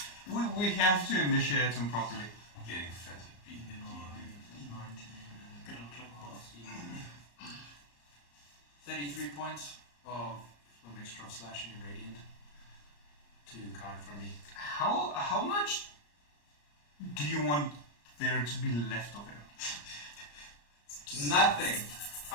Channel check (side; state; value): right; late; 34 ms